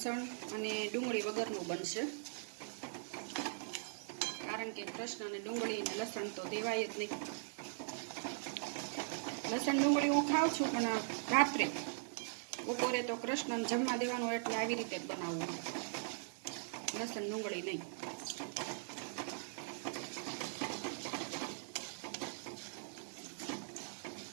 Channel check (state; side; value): silent; left; digital silence